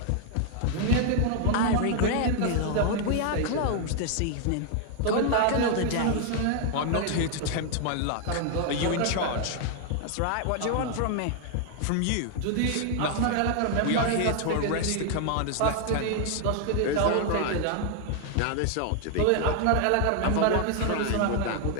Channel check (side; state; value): both; different; correlation 0.00